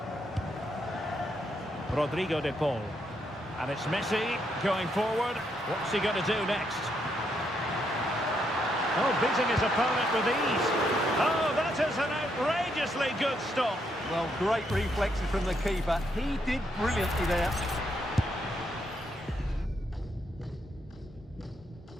Rodrigo de Paul. And it's Messi going forward. What's he going to do next? Oh, beating his opponent with ease. Oh, that is an outrageously good stop. Well, great reflexes from the keeper. He did brilliantly there.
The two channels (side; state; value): both; normal; correlation 0.77